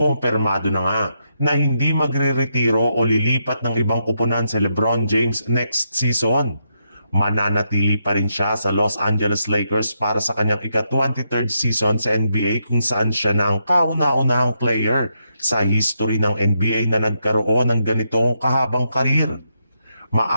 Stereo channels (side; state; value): both; inverted; correlation -0.81